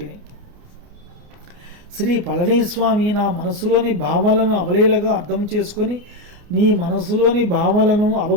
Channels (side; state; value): left; late; 29 ms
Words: శ్రీ పళనిస్వామి నా మనసులోని భావాలను అవలీలగా అర్థం చేసుకొని నీ మనసులోని భావాలను